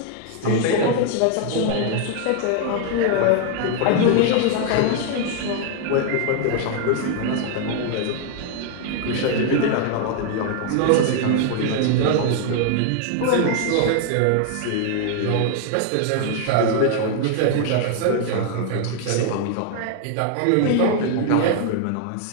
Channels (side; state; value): both; different; correlation 0.00